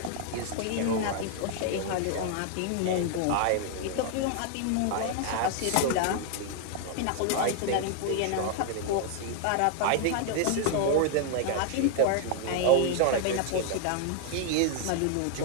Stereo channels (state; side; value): different; both; correlation 0.00